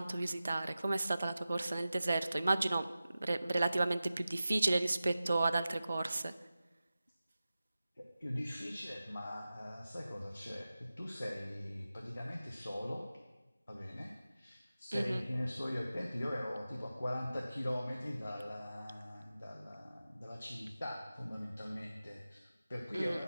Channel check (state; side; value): inverted; both; correlation -0.95